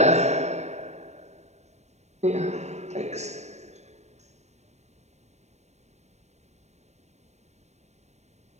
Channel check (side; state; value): left; late; 0.32 ms